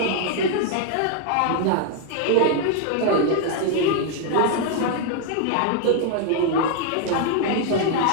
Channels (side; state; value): both; different; correlation 0.00